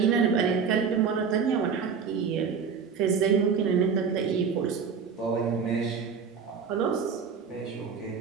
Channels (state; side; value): quieter; left; 6.1 dB